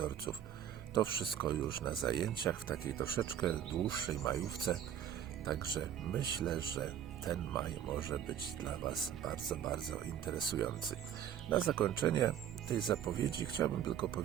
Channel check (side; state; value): left; quieter; 9.7 dB